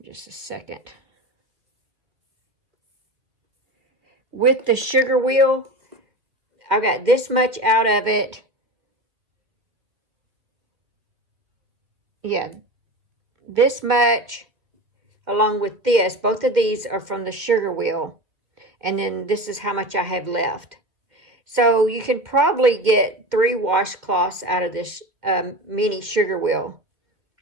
just a second. With the sugar wheel, I got this much out of it. Yeah, this much along with this. Both of these are from the sugar wheel. And then this is how much I have left. So you can probably get 3 washcloths out of this mini sugar wheel.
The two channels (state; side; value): late; left; 2.1 ms